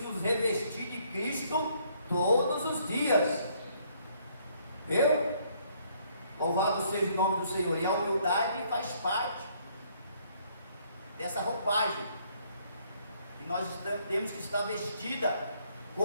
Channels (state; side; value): inverted; both; correlation -0.66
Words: nos revestir de Cristo todos os dias. Viu? Louvado seja o nome do Senhor. E a humildade faz parte dessa roupagem. E nós temos que estar vestida